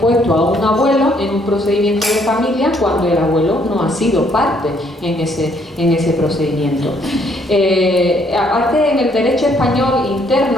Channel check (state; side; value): normal; both; correlation 0.67